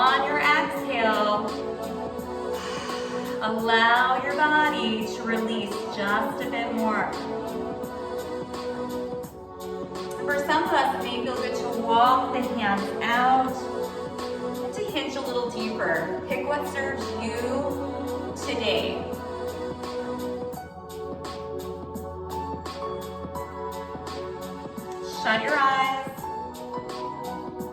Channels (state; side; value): identical; both; correlation 1.00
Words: your exhale, allow your body to release just a bit more. For some of us, it may feel good to walk the hands out and to hinge a little deeper. Pick what serves you today. Shut your eyes.